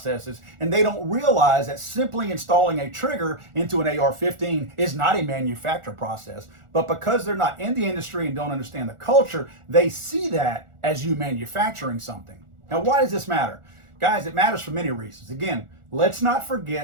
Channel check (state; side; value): late; left; 1.4 ms